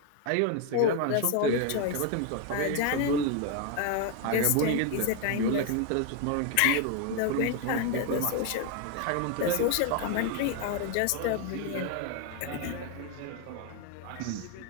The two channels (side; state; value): both; different; correlation 0.01